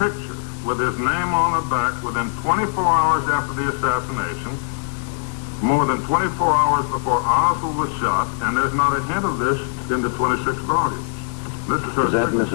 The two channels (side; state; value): right; silent; digital silence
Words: with his name on the back within 24 hours after the assassination, more than 24 hours before Oswald was shot, and there's not a hint of this in the 26 volumes. This is her. Is that